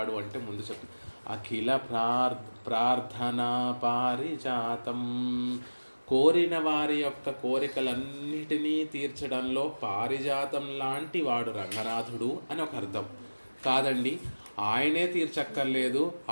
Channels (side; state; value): both; inverted; correlation -1.00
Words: అంటే ముందు చెప్తుంది అఖిల ప్రార్థనా పారిజాతం. కోరిన వారి యొక్క కోరికలన్నిటినీ తీర్చడంలో పారిజాతం లాంటి వాడు రంగనాథుడు అని ఒక అర్థం కాదండి. ఆయనే తీర్చక్కర్లేదు,